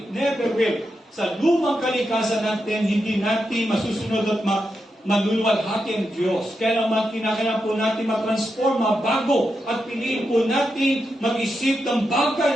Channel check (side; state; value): both; normal; correlation 0.86